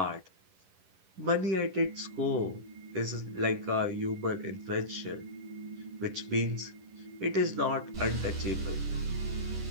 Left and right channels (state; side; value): late; left; 11 ms